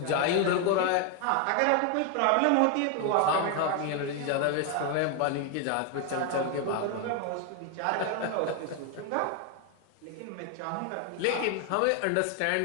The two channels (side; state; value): both; different; correlation 0.01